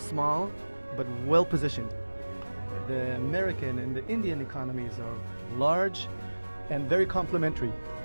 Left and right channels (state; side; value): inverted; both; correlation -1.00